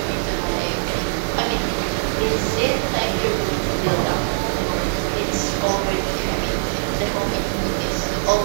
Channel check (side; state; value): left; silent; digital silence